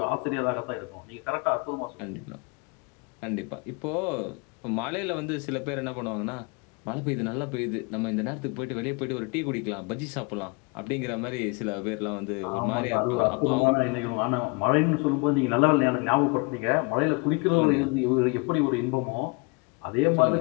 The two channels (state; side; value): quieter; right; 29.6 dB